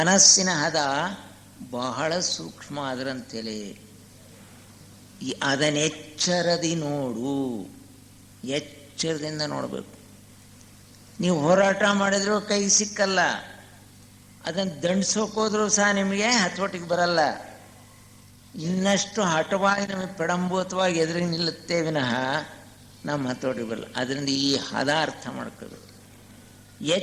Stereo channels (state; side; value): identical; both; correlation 1.00